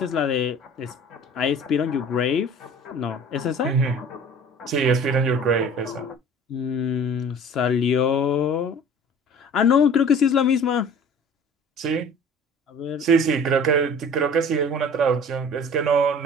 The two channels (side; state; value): both; normal; correlation 0.45